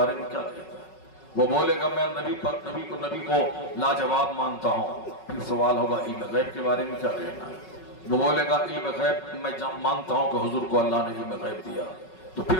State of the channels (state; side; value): late; right; 5.4 ms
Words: میں کیا کہتا ہے؟ وہ بولے گا میں نبی کو لاجواب مانتا ہوں، پھر سوال ہوگا علم غیب کے بارے میں کیا کہنا ہے؟ وہ بولے گا علم غیب میں مانتا ہوں کہ حضور کو اللہ نے علم غیب دیا، تو